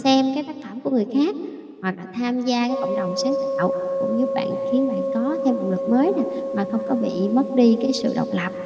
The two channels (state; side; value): identical; both; correlation 1.00